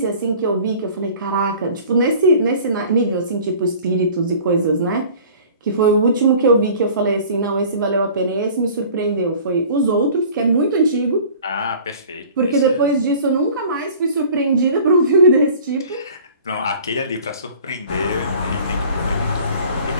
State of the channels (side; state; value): both; inverted; correlation -0.47